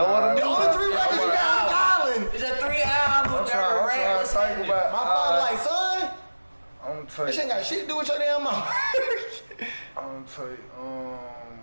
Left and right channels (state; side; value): inverted; both; correlation -1.00